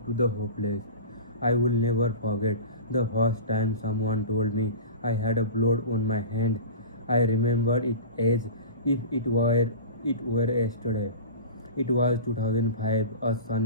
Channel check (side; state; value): both; inverted; correlation -0.33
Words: to the hopeless. I will never forget the first time someone told me I had a blood on my hand. I remember it as if it were yesterday. It was 2005, a